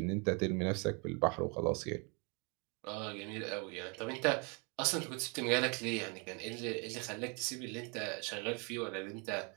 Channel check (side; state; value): left; quieter; 33.0 dB